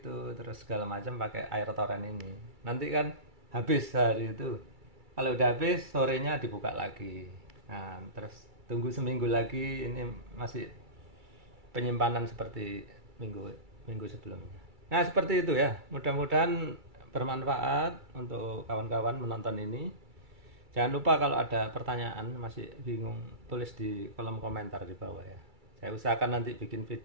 terus segala macam pakai air toren ini. Nanti kan habis hari itu. Kalau udah habis sorenya dibuka lagi. Nah terus tunggu seminggu lagi ini masih penyimpanan seperti minggu minggu sebelumnya. Nah seperti itu ya. Mudah-mudahan bermanfaat untuk kawan-kawan menonton ini. Jangan lupa kalau ada pertanyaan masih bingung tulis di kolom komentar di bawah ya. Saya usahakan nanti bikin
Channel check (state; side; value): late; left; 2.3 ms